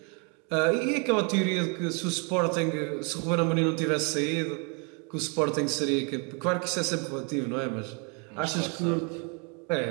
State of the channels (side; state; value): left; quieter; 35.4 dB